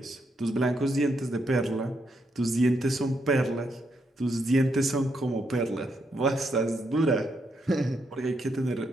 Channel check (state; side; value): normal; both; correlation 0.79